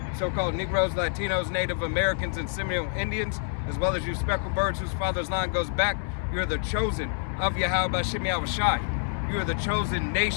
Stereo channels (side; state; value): right; silent; digital silence